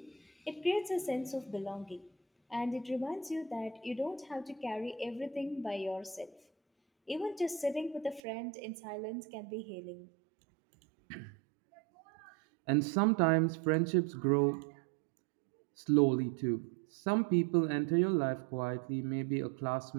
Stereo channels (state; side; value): drops out; left; at 8.2 s